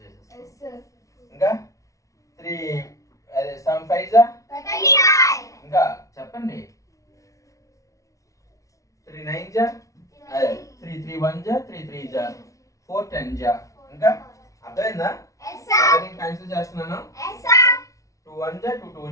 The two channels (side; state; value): right; late; 0.16 ms